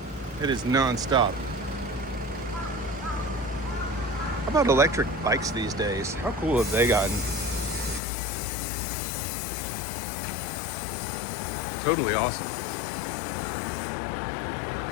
It is non-stop. How about electric bikes these days? How cool have they gotten? Totally awesome.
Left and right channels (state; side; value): drops out; right; at 8.0 s